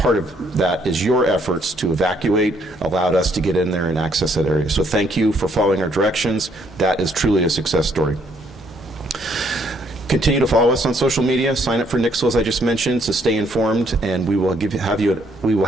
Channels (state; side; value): normal; both; correlation 0.68